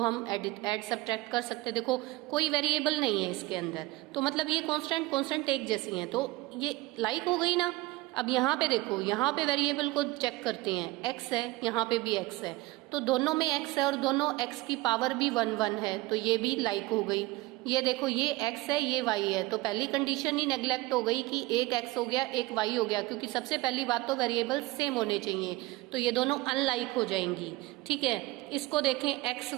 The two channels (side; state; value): left; quieter; 20.4 dB